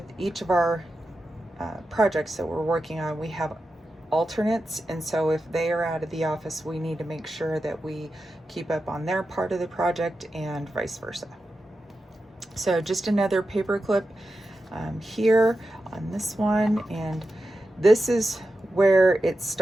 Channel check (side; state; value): both; normal; correlation 0.91